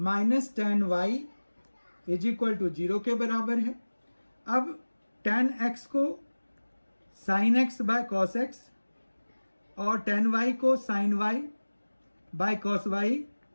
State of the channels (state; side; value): inverted; both; correlation -1.00